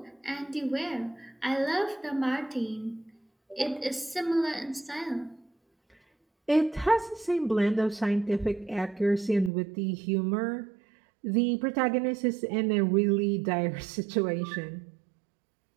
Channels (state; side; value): drops out; left; at 9.5 s